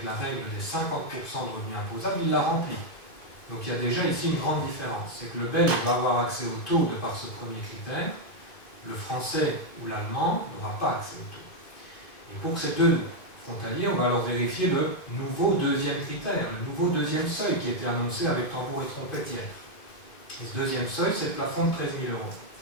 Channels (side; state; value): right; late; 2.5 ms